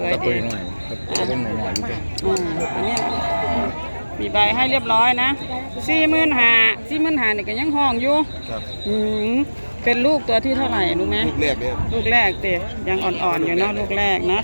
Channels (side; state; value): both; inverted; correlation -1.00